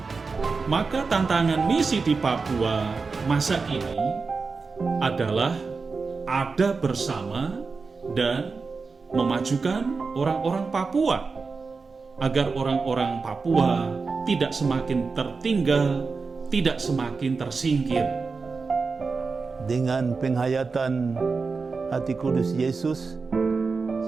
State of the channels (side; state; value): left; quieter; 4.5 dB